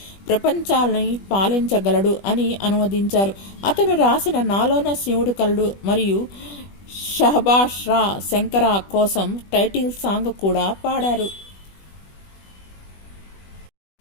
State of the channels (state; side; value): late; right; 20 ms